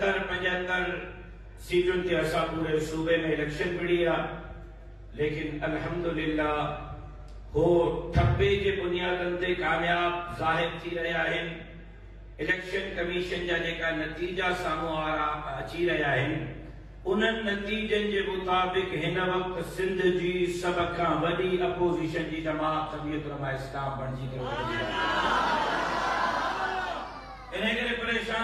सीटुनि ते असां पूरे सूबे में इलेक्शन विड़ी आहे। लेकिन अल्हम्दुलिल्लाह हो ठप्पे जे बुनियादनि ते कामयाब ज़ाहिर थी रहिया आहिनि। इलेक्शन कमीशन जा जेका नतीजा साम्हूं अची रहिया आहिनि उन्हनि नतीजनि जे मुताबिक़ हिन वक्त सिंध जी सभ खां वॾी अपोज़िशन जी जमात जमीयत उलमा इस्लाम बणिजी करे इन करे परेशान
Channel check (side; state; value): both; identical; correlation 1.00